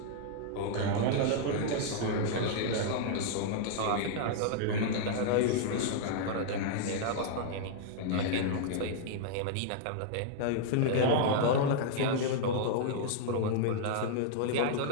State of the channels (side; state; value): both; different; correlation -0.01